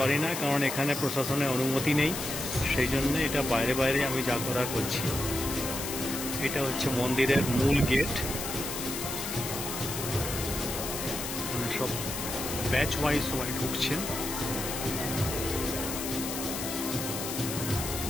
না, কারণ এখানে প্রশাসনের অনুমতি নেই। সেই জন্য এটা বাইরে বাইরে আমি যা করার করছি। এটা হচ্ছে মন্দিরের মূল গেট। সব ব্যাচ ওয়াইজ সবাই ঢুকছেন।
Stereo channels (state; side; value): noise; left; hiss, 5 dB below the sound